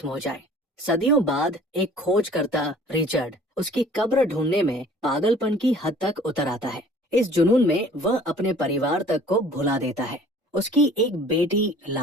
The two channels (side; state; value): both; normal; correlation 0.50